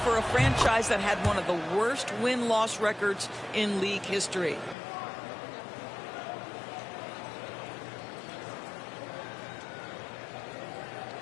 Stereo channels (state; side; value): drops out; right; at 4.8 s